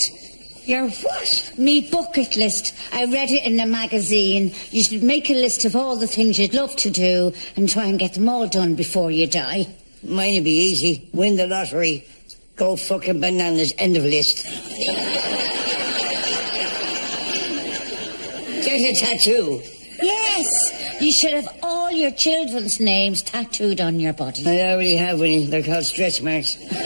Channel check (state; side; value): inverted; both; correlation -1.00